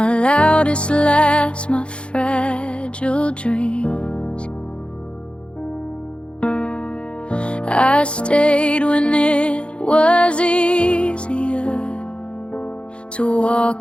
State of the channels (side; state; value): right; late; 0.058 ms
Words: loudest laughs, my fragile dreams. I stayed when it was easier to